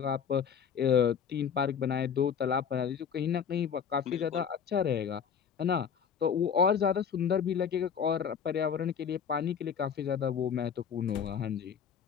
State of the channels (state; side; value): quieter; right; 7.3 dB